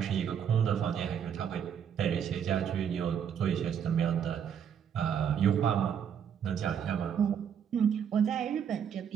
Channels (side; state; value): left; quieter; 8.2 dB